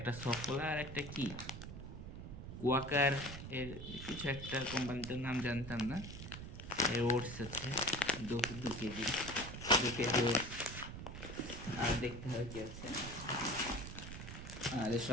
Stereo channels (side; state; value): right; noise; rumble, 9 dB below the sound